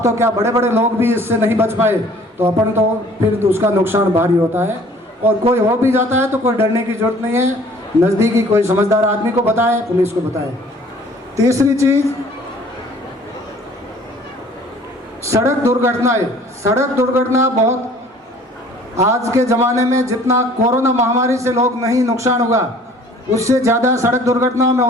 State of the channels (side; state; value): both; normal; correlation 0.53